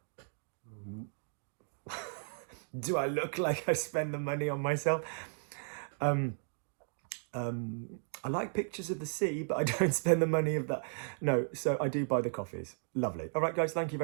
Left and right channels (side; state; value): left; silent; digital silence